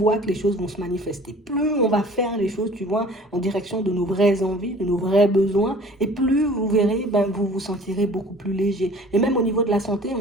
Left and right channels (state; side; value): normal; both; correlation 0.48